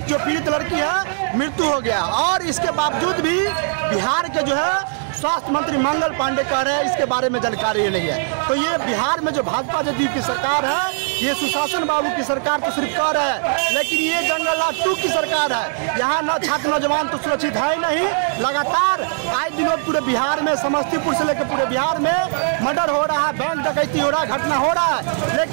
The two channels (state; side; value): silent; left; 66 dB below the other